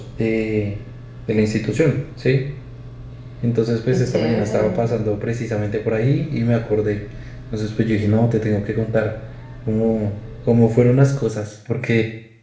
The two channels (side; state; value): both; identical; correlation 1.00